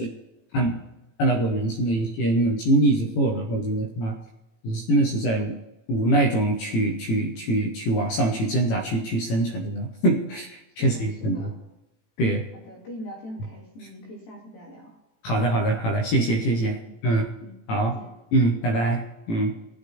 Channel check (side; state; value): right; late; 18 ms